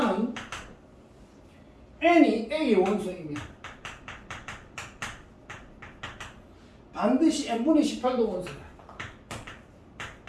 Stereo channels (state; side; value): identical; both; correlation 1.00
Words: N이 A의 원소이면 반드시 N분의 18도 원소다.